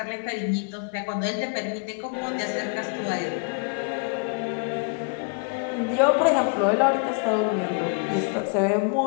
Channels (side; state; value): right; quieter; 36.5 dB